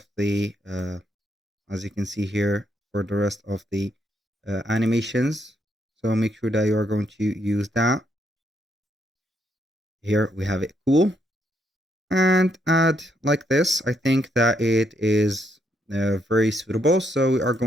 the, as you can see here, for the rest of the animations. So make sure that you are going to use that. Here we have it cool. And add like this. I think that it is very suitable. So we are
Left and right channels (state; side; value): normal; both; correlation 0.76